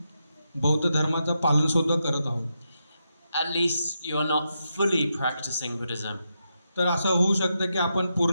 बौद्ध धर्माचं पालन सुद्धा करत आहोत. At least you are not fully practicing Buddhism. तर असं होऊ शकतं की आपण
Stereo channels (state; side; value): inverted; both; correlation -0.85